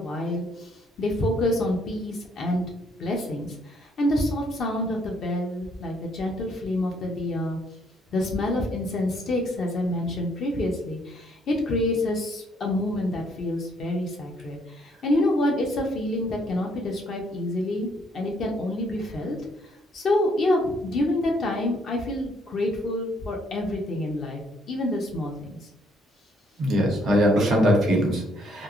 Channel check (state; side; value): normal; both; correlation 0.68